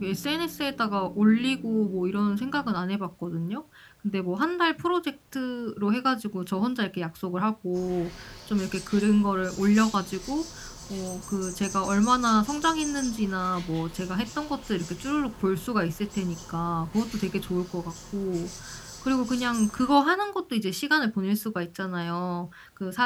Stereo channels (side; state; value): both; identical; correlation 1.00